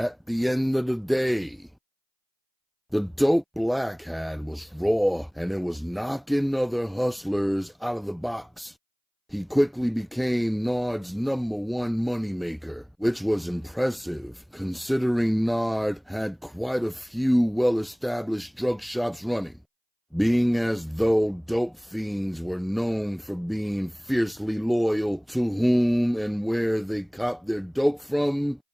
the end of the day. The dope Black had was raw, and it was knocking other hustlers out of the box. He quickly became Nard's #1 moneymaker, which was impressive considering Nard had quite a few well-established drug shops running. Being as though dope fiends were known for being fiercely loyal to whom and where they copped their dope from,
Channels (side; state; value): both; identical; correlation 1.00